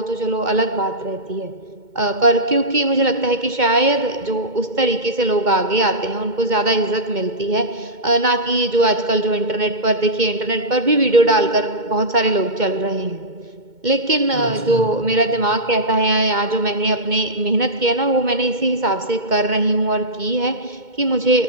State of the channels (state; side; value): late; left; 2.2 ms